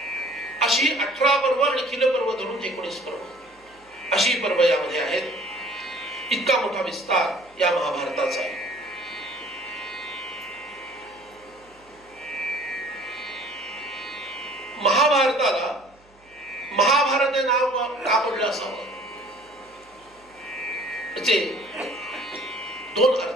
अशी 18 पर्व आणि खिल पर्व धरून 19 पर्व अशी पर्व यामध्ये आहेत. इतका मोठा विस्तार या महाभारताचा आहे. महाभारताला महाभारत हे नाव का पडलं असावं? त्याचे 2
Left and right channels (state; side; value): noise; right; hum, 30 dB below the sound